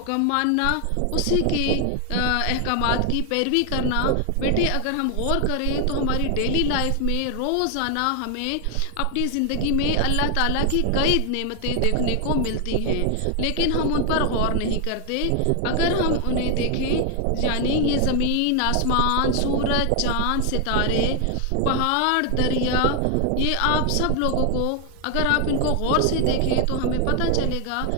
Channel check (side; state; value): both; different; correlation 0.00